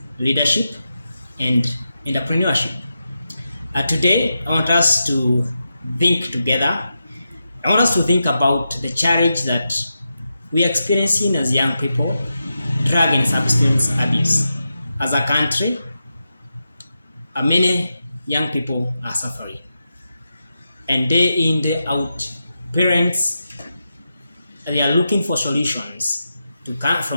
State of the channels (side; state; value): both; inverted; correlation -0.88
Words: leadership, and entrepreneurship. Today, I want us to think together. I want us to think about the challenge that we are experiencing as young people, drug and substance abuse. As a country, many young people are suffering. And day in, day out, parents they are looking for solutions